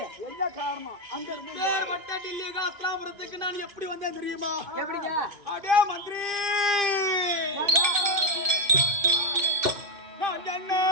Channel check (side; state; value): left; late; 2.5 ms